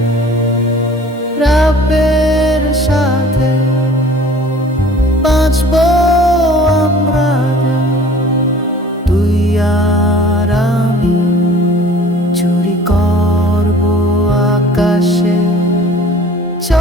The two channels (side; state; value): both; normal; correlation 0.48